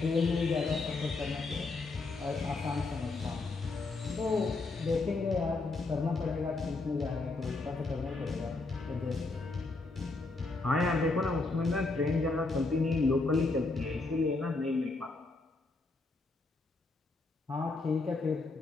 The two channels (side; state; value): right; quieter; 3.5 dB